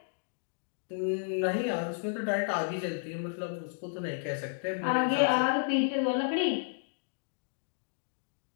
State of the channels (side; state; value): right; silent; digital silence